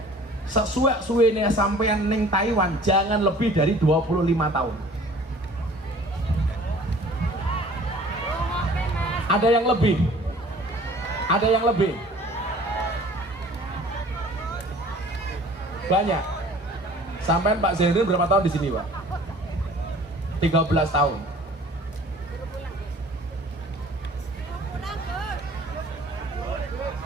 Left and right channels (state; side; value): normal; both; correlation 0.49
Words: sesuai suwene sampean ning Taiwan jangan lebih dari 25 tahun. Ada yang lebih? Ada yang lebih? Banyak. Sampean Pak Zainuddin berapa tahun di sini, Pak? 13 tahun.